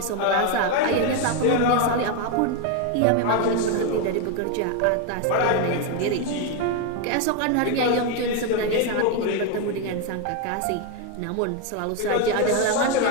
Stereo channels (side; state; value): both; different; correlation 0.01